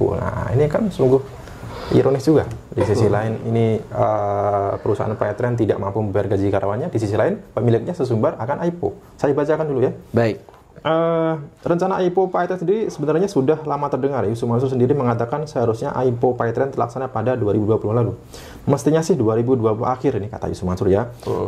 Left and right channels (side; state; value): both; identical; correlation 1.00